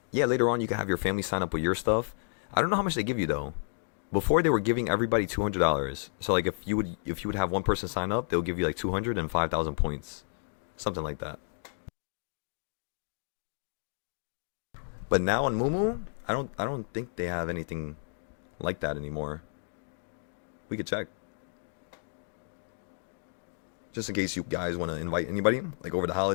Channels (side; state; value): right; silent; digital silence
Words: yeah, later on you can have your family sign up with your stuff. I don't know how much they give you though. Before they were giving everybody $200. So like if you would have one person sign up, they'll give you like 200 and 5,000 points. Something like that. But now on Moomoo, I don't think they have anything like that anymore. We could check. Just in case you guys want to invite anybody, like over the